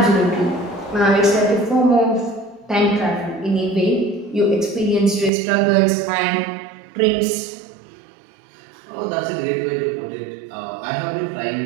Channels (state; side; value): drops out; left; at 5.3 s